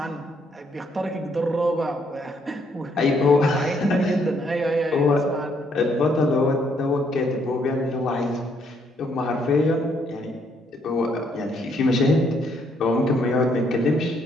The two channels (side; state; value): both; normal; correlation 0.70